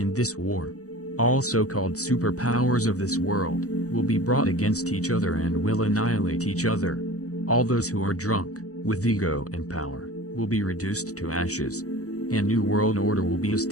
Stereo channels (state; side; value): late; right; 0.66 ms